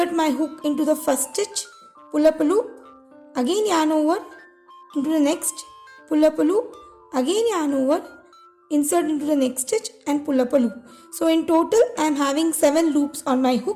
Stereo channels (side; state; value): both; identical; correlation 1.00